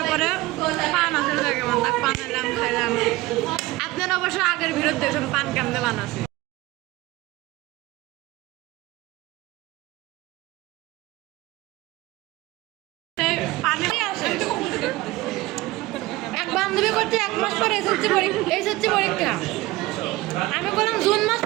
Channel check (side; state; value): left; quieter; 19.1 dB